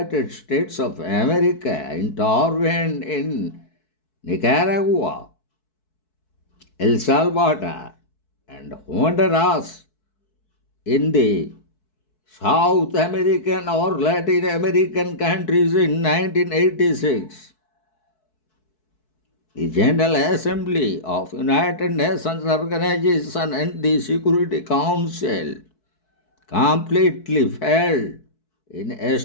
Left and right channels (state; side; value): late; right; 4.6 ms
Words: States of America intervened in Nicaragua, El Salvador, and Honduras in the South American or Latin American countries in 1986, the General Assembly of United Nations Organization and the Security Council completely failed in